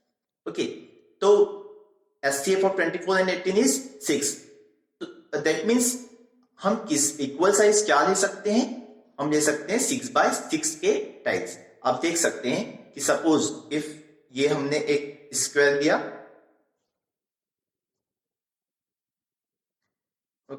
Okay, तो SCF of 24 and 18 is 6. That means हम किस इक्वल साइज क्या ले सकते हैं, हम ले सकते हैं 6/6 के टाइल्स. आप देख सकते हैं कि सपोज इफ ये हमने एक स्क्वायर लिया,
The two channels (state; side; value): identical; both; correlation 1.00